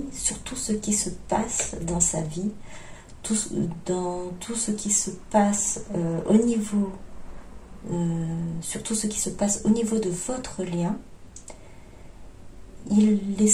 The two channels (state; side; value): identical; both; correlation 1.00